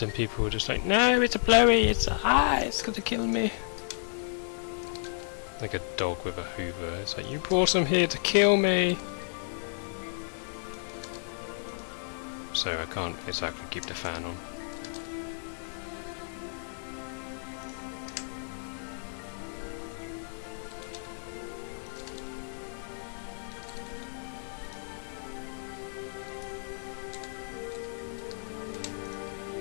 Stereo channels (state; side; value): silent; right; digital silence